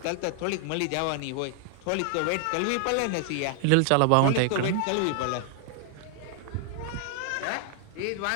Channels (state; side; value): different; both; correlation 0.00